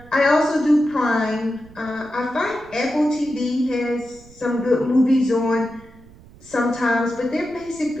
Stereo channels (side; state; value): right; noise; rumble, 23 dB below the sound